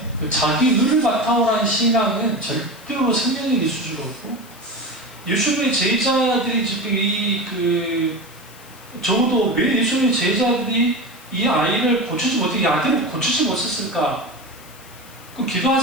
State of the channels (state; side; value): noise; left; hiss, 22 dB below the sound